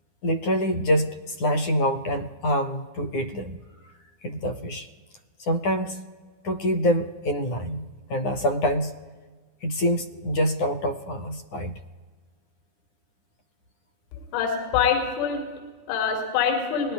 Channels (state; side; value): late; right; 9.8 ms